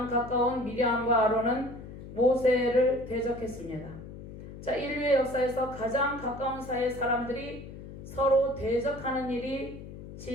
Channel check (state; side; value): noise; left; hum, 13 dB below the sound